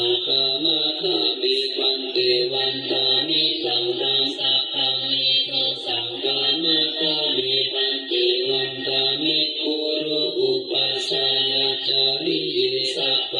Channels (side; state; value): both; identical; correlation 1.00